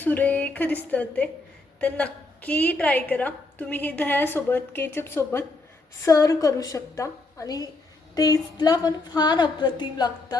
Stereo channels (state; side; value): quieter; right; 3.2 dB